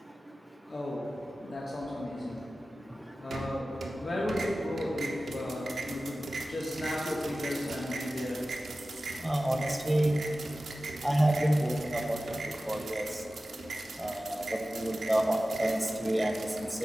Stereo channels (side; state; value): both; normal; correlation 0.95